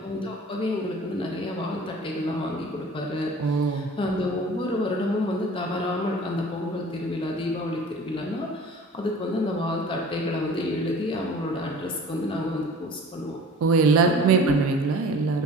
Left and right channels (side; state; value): both; normal; correlation 0.44